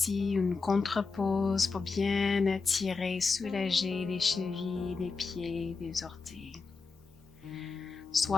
une contre-pause pour bien étirer, soulager les chevilles, les pieds, les orteils.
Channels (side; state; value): right; quieter; 4.4 dB